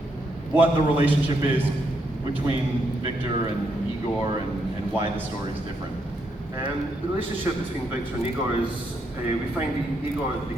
what the relationship is between Victor and Igor and why the story is different. The relationship between Victor and Igor is, we find Igor at the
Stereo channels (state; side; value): normal; both; correlation 0.78